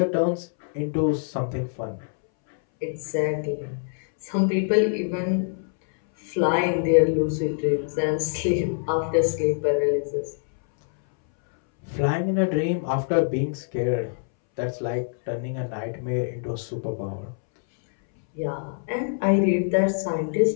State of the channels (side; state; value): right; silent; 62 dB below the other